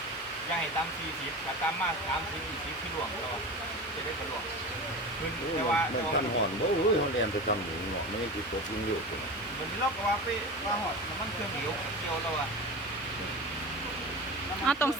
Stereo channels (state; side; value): normal; both; correlation 0.30